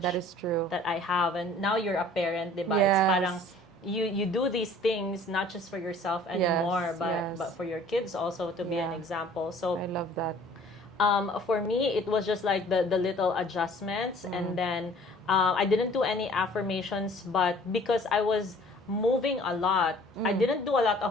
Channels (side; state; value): both; normal; correlation 0.52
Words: That is true. That I have. And now you're a parent, diba? Yes. It's parang you do these things not just for yourself anymore, but for your kids also to be an example. So I love that. For me, it was just like the little adjustments. And then I didn't do any affirmations, but because I was moving a lot, I didn't do a lot